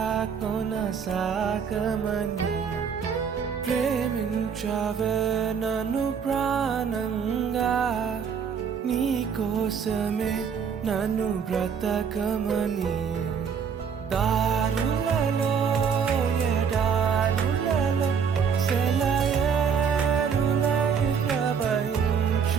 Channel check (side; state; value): left; quieter; 6.7 dB